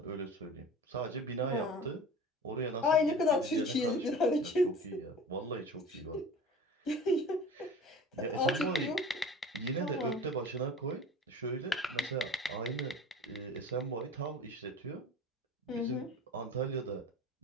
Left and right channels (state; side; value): normal; both; correlation 0.39